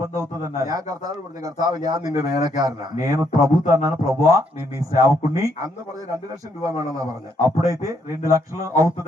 అవుతుంది అన్నారు. ഞാൻ കർത്താവ് പറഞ്ഞു, കർത്താവ് ഞാൻ നിന്റെ വേലക്കാരനാ. నేను ప్రభుతో అన్నాను, ప్రభువా నేను నీ సేవకుణ్ణి. അന്ന് പറഞ്ഞ 2 ലക്ഷം രൂപ വേണമെന്നാ പറഞ്ഞു. అప్పుడైతే 2 లక్షలు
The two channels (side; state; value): both; normal; correlation 0.73